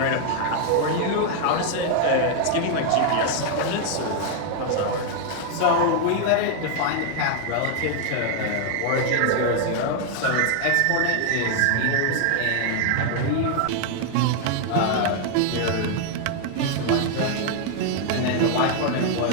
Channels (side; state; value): both; different; correlation 0.00